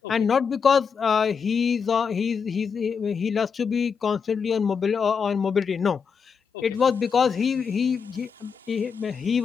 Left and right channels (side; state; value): right; quieter; 6.1 dB